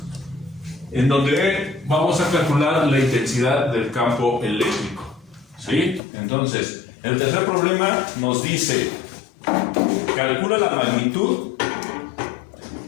en donde vamos a calcular la intensidad del campo eléctrico. ¿Sí? Entonces, el tercer problema nos dice: calcula la magnitud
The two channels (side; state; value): right; drops out; at 6.0 s